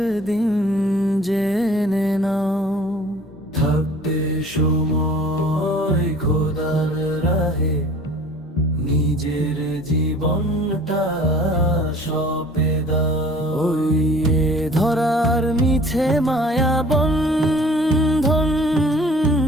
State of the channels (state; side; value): normal; both; correlation 0.48